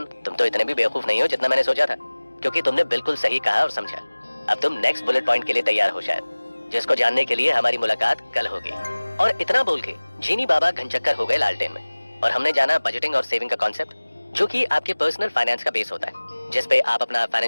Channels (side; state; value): both; inverted; correlation -1.00